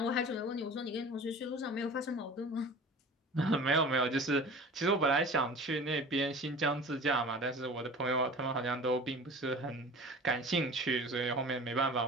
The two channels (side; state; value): both; normal; correlation 0.40